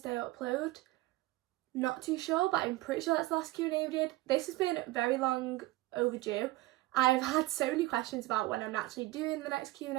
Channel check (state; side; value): quieter; left; 18.8 dB